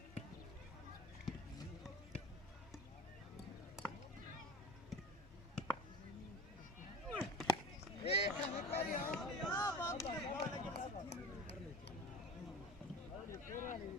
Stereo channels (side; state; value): both; normal; correlation 0.36